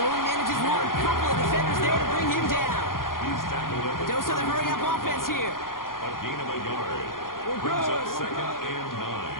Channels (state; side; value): late; right; 0.91 ms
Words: only manages one. Couple of defenders there to bring him down. A dose of the hurry-up offense here. A gain of a yard. Brings up 2nd and 9.